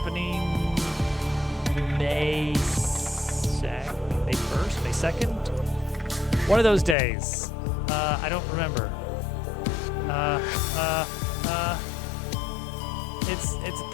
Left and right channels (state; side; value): drops out; right; at 7.0 s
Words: May 1st, May 2nd? One of those days. I don't remember. It's a